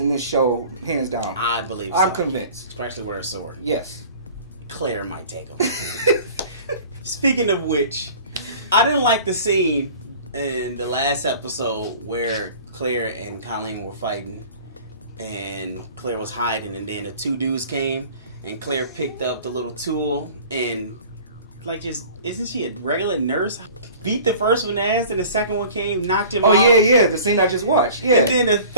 in this show hands down. I believe so. I'm convinced. Especially with a sword. Yes. Claire might take him. Speaking of which, I didn't like the scene in the last episode where Claire and Colleen were fighting, and Claire was hiding, and then the two dudes came, and Claire picked up the little tool and like just isn't she a regular nurse? Beat the first one ass, and the second one came, knocked him out. Oh yeah, the scene I just watched. Yeah, and then the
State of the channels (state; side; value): inverted; both; correlation -0.45